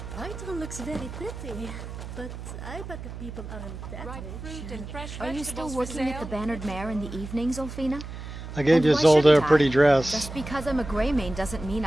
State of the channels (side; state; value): right; noise; hum, 10 dB below the sound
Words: White looks very pretty, but I bet the people aren't that rich. Are you still working at the Bannered Mare in the evenings, Ulfina? I gave And why Isolde a shouldn't pretty I? dress. Just because I'm a Grey Mane doesn't mean